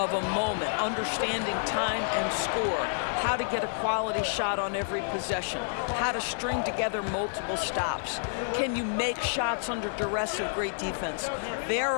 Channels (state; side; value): silent; right; 58 dB below the other